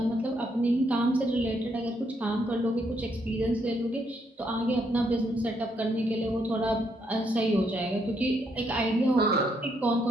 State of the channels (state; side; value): normal; both; correlation 0.75